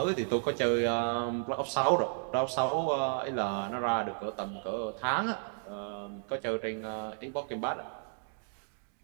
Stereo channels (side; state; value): left; silent; digital silence